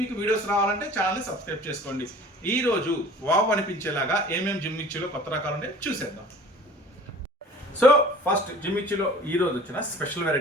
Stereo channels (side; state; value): both; normal; correlation 0.46